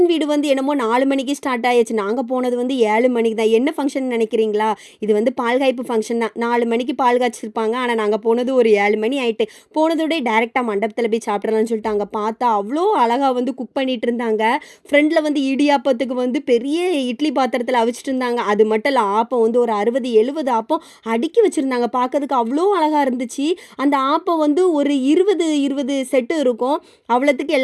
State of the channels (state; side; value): identical; both; correlation 1.00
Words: வீடு வந்து என்னமோ 4 மணிக்கு ஸ்டார்ட் ஆயாச்சு. நாங்க போனது வந்து 7 மணிக்கு தான். என்ன ஃபங்ஷன் நினைக்கிறீங்களா? இது வந்து பால் காய்ப்பு ஃபங்ஷன் தான். 4 மணிக்கு பால் காய்ச்சிருப்பாங்க. ஆனா நாங்க போனது ஒரு 7 மணி ஆயிட்டு. போனதோடயே டைரக்ட்டா மண்டபத்தில போய் சாப்பிடலாம்னு சொல்லிட்டு அங்க பார்த்தா, அவ்ளோ அழகா வந்து குக் பண்ணிட்டு இருந்தாங்க. ஃப்ரண்ட்ல வந்து இடியாப்பத்துக்கு வந்து பெரிய இட்லி பாத்திரத்தில அவிச்சிட்டு இருந்தாங்க. அது மட்டும் இல்ல ஆப்பம் வந்து ஒரு 60, 70 ஆப்பம் அடுக்கி வச்சிருந்தாங்க. பார்க்கறதுக்கு அவ்ளோ அழகா இருந்துச்சு. அந்த ஆப்பம் வந்து ஒரு 20 செட்டு இருக்கும். அவ்வளத்துக்கு